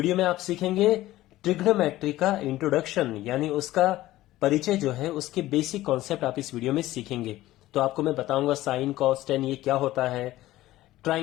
में आप सीखेंगे ट्रिग्नोमेट्री का इंट्रोडक्शन, यानी उसका परिचय जो है, उसके बेसिक कॉन्सेप्ट आप इस वीडियो में सीखेंगे। तो आपको मैं बताऊंगा साइन कॉस टेन ये क्या होता है,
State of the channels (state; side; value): quieter; right; 15.9 dB